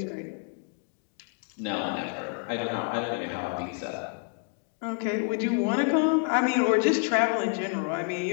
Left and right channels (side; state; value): right; quieter; 39.2 dB